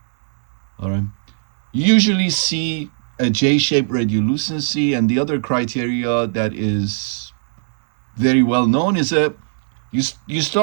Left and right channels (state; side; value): silent; left; digital silence